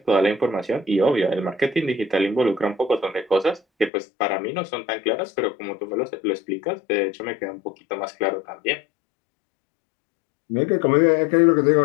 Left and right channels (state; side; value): drops out; right; at 3.9 s